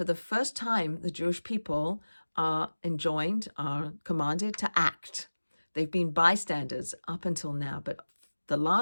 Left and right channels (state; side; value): inverted; both; correlation -1.00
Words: the first time, the Jewish people are commanded to act. They've been bystanders up until now, but the